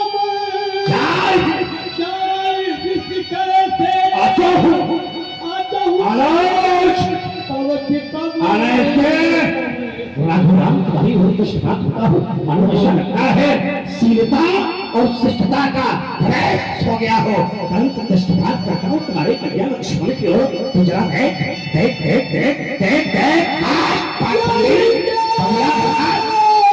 चाहे विष्णु करे थे आता हूँ राम तुम्हारी हो तो शिफात होता हूँ। मानो ऐसा लगता है शीलता और शिष्टता का प्रयास हो गया हो। अंत दृष्टिपात करता हूँ तुम्हारे कल्याण लक्ष्मण की ओर। तो जरा देख देख देख देख देख देख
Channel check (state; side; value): identical; both; correlation 1.00